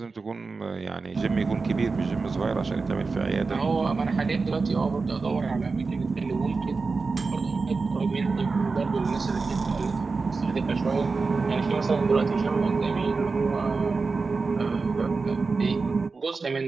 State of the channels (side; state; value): left; quieter; 4.3 dB